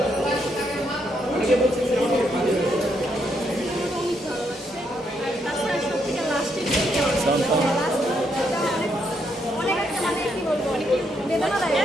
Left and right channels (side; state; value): both; normal; correlation 0.76